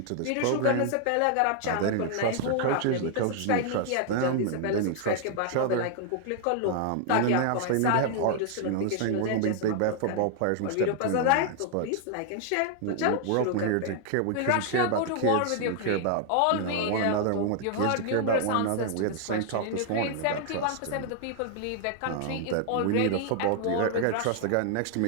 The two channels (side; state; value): both; different; correlation 0.00